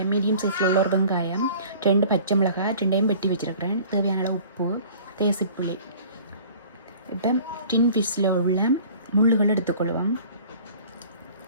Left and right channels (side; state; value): both; inverted; correlation -0.48